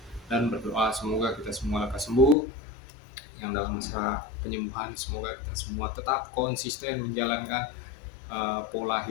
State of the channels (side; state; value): right; drops out; at 2.4 s